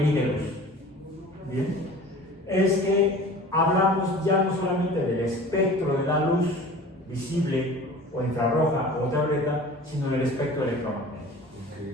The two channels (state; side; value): normal; both; correlation 0.42